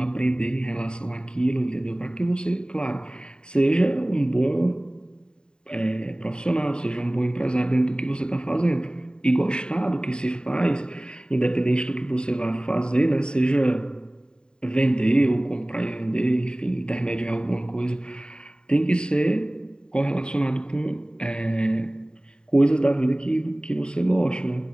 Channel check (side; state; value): right; late; 0.048 ms